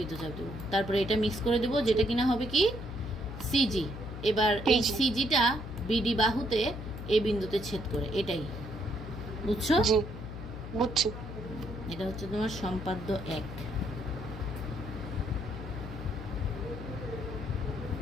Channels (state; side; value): noise; left; hum, 9 dB below the sound